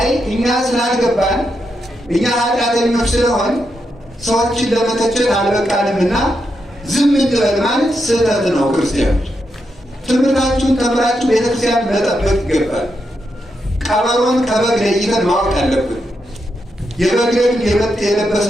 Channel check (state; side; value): normal; both; correlation 0.84